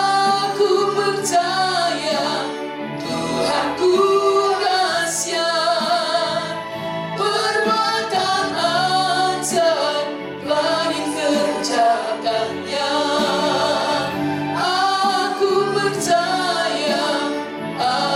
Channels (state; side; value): identical; both; correlation 1.00